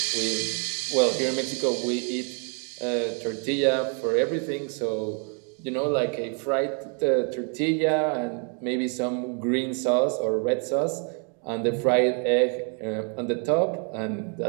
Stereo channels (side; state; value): left; quieter; 39.2 dB